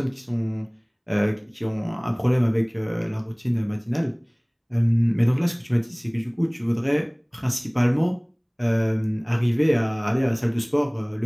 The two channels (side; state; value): both; identical; correlation 1.00